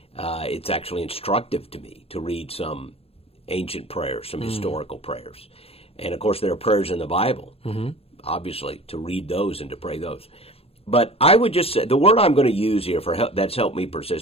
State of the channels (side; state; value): right; late; 0.28 ms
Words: It's actually instructive to me to read some ancient prayers, some historical prayers. And, of course, there are prayers in the Bible, obviously, to read those and to pray those. But I would just say the word I'm going to use here for that's helped me